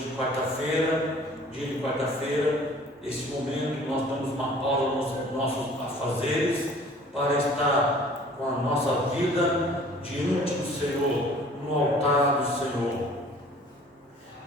quarta-feira, dia de quarta-feira, esse momento que nós damos uma pausa nos nossos afazeres para estar com a nossa vida diante do Senhor, no altar do Senhor.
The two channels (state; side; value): normal; both; correlation 0.51